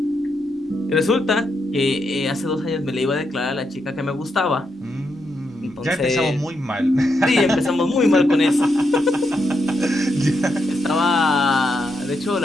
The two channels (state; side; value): normal; both; correlation 0.82